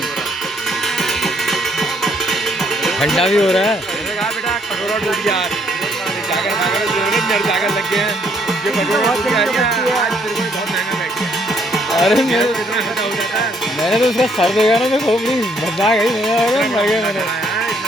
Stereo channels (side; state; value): both; normal; correlation 0.68